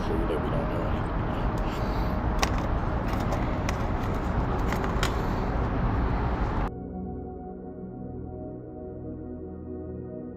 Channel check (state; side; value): identical; both; correlation 1.00